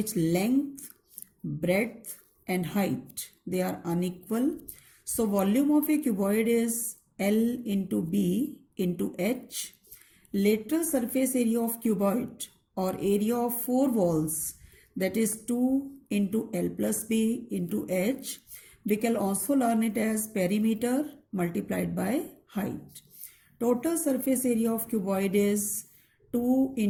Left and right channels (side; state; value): both; identical; correlation 1.00